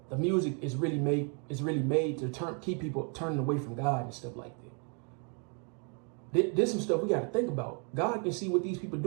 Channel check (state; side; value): quieter; left; 38.3 dB